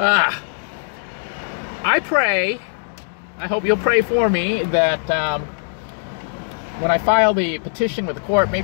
I pray, I hope you'll pray for me, that when I file the petition with the court,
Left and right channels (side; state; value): right; silent; digital silence